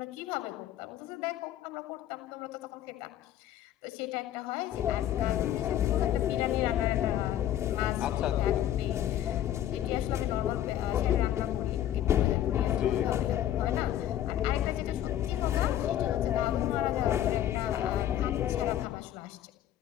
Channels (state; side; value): quieter; right; 11.7 dB